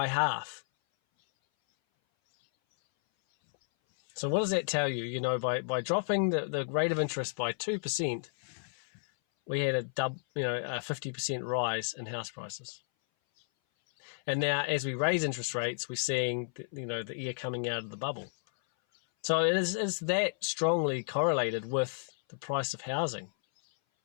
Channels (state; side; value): silent; right; 56 dB below the other